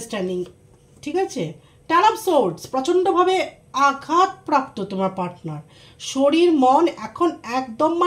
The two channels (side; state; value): both; identical; correlation 1.00